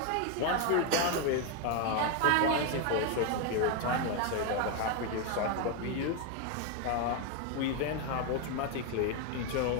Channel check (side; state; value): both; different; correlation 0.01